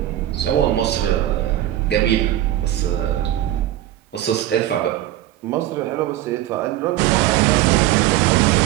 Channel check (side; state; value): left; quieter; 13.8 dB